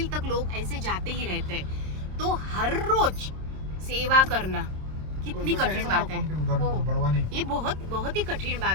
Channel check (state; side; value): late; left; 26 ms